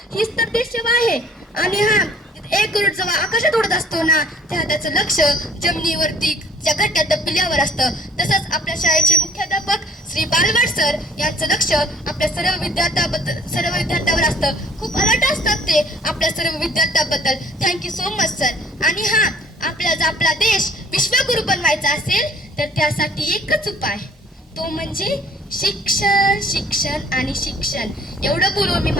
हीच तर देशसेवा आहे. आणि हा एक गरुड जेव्हा आकाशात उडत असतो ना, तेव्हा त्याचं लक्ष जमिनीवरती ज्या घट्ट्या पिल्यावर असतं. तसंच आपल्या शाळेचे मुख्याध्यापक श्री बालवाड सर यांचं लक्ष आपल्या सर्व विद्यार्थ्यावर असतं. खूप अलर्ट असतात ते आपल्या सर्व विद्यार्थ्याबद्दल. Thank you so much sir. आणि हा आपला देश विश्वगुरु बनवायचा असेल तर त्यासाठी एकच उपाय, तो म्हणजे शिक्षण शिक्षण आणि शिक्षण. एवढं बोलून मी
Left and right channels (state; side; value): normal; both; correlation 0.56